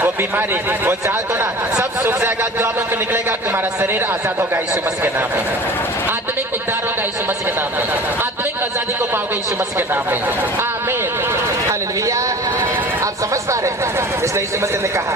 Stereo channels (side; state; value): both; normal; correlation 0.41